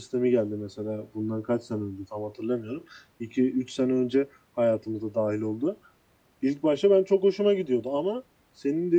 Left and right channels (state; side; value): identical; both; correlation 1.00